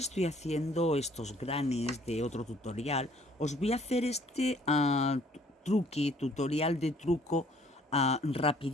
estoy haciendo estos granis de otro tutorial, os voy a hacer este tutorial de truco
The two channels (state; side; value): normal; both; correlation 0.59